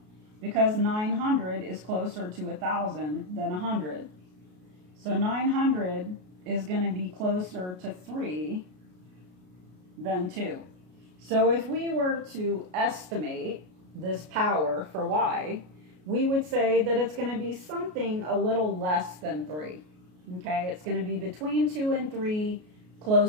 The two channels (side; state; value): left; late; 33 ms